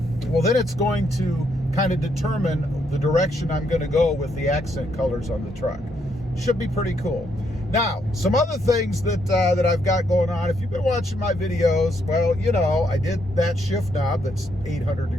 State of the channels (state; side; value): normal; both; correlation 0.75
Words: well, then it's going to kind of determine the direction I'm going to go with the accent colors on the truck. Should be pretty cool. Now, some other things that I've got going on. If you've been watching my videos, well, you know, I did that shift knob that's 800